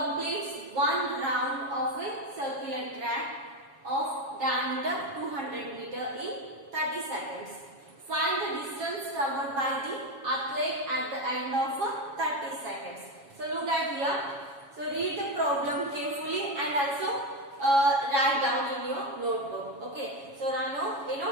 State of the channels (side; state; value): left; late; 7.2 ms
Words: one round of a circular track of diameter 200 meter in 30 seconds. Find the distance covered by the athlete at the end of 30 seconds. So look at here. So read the problem carefully and also write down in your notebook. Okay. So ನಾನು